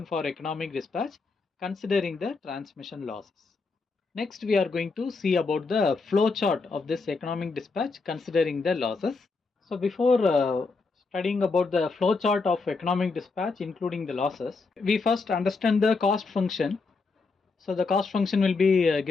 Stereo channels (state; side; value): quieter; right; 4.2 dB